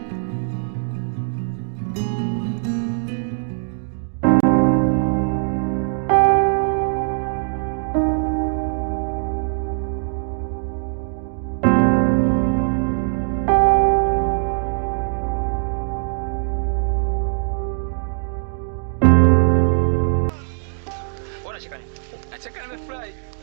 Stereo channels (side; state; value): left; silent; digital silence